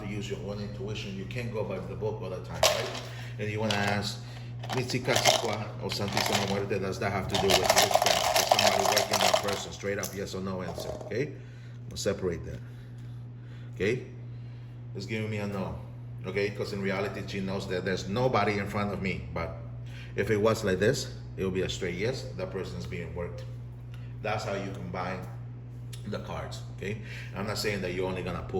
use your own intuition. You can't go by the book all the time, right? And you want to ask, Mitsikasikwa or Santísima Muerte, does that have to do with witchcraft? Is somebody working that person? Straight up yes or no answer, okay? We'll separate that, okay? It's giving me a no, okay? Because in reality, she knows that there's nobody in front of me. But if it was like this, it will be a straight yes. That person is being worked. That's how you combine the cards, okay? I'm not saying that you're only gonna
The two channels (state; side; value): identical; both; correlation 1.00